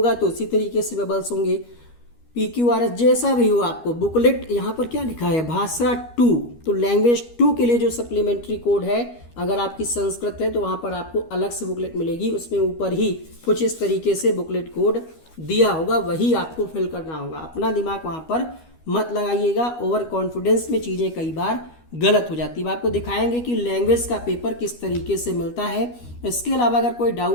तो उसी तरीके से बबल्स होंगे। PQRS जैसा भी हो आपको बुकलेट, यहाँ पर क्या लिखा है, भाषा 2, तो लैंग्वेज 2 के लिए जो सप्लीमेंट्री कोड है, अगर आपकी संस्कृत है तो वहाँ पर आपको अलग से बुकलेट मिलेगी, उसमें ऊपर ही कुछ इस तरीके से बुकलेट कोड दिया होगा, वही आपको फिल करना होगा। अपना दिमाग वहाँ पर मत लगाइएगा, ओवर कॉन्फिडेंस में चीज़ें कई बार गलत हो जाती है। आपको दिखाएंगे कि लैंग्वेज का पेपर किस तरीके से मिलता है। इसके अलावा अगर कोई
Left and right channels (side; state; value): right; late; 12 ms